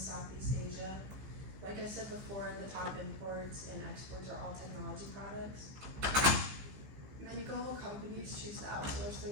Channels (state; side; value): late; left; 15 ms